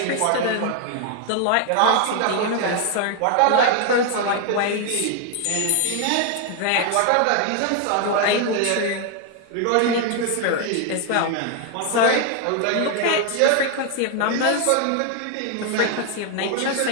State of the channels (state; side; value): different; both; correlation 0.01